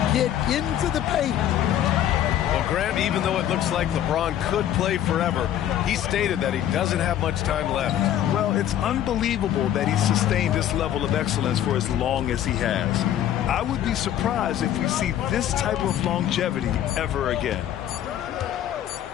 Get into the paint. Well, Grant, even though it looks like LeBron could play forever, he stated that he doesn't have much time left. Well, it's unbelievable that he's sustained this level of excellence for as long as he has. I would be surprised if we see this type of longevity ever again.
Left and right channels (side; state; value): right; quieter; 11.2 dB